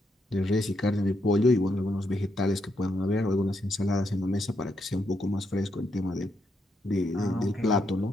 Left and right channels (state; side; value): normal; both; correlation 0.80